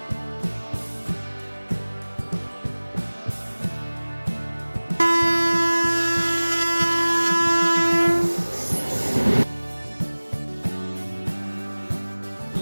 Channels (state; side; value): inverted; both; correlation -1.00